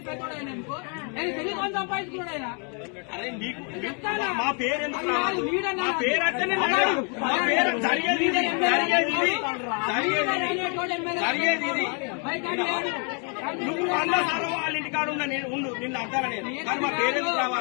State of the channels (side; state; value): right; quieter; 38.4 dB